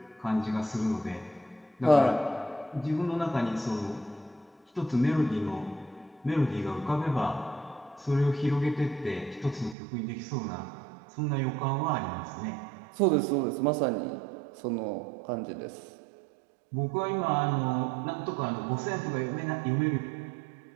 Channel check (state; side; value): drops out; left; at 9.8 s